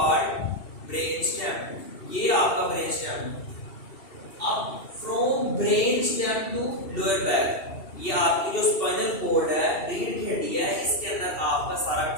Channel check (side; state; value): right; late; 2.7 ms